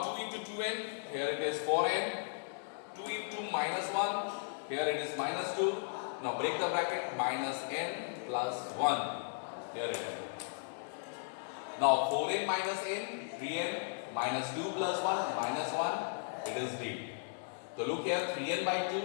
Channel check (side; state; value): right; silent; digital silence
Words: 2 into 2n, here it is 4n. 2 into minus 1, here it is minus 2. Now break the bracket, minus n plus 1. Here it is. Now 4n minus n, 3n, minus 2 plus 1, minus 1. It is D. So look here, 3n by